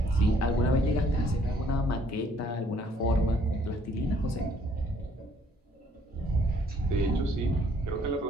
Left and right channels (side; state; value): both; normal; correlation 0.63